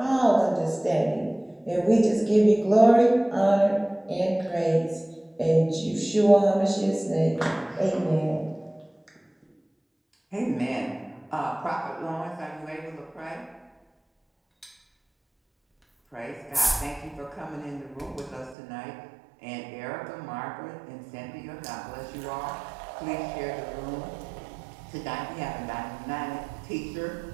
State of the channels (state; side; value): drops out; left; at 18.6 s